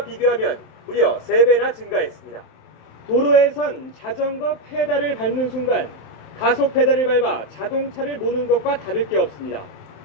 비교하면 무려 3배나 증가했습니다. 도로에선 자전거 페달을 밟는 순간 가속 페달을 밟아 자동차를 모는 것과 다를 게 없습니다.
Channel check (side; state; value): right; late; 27 ms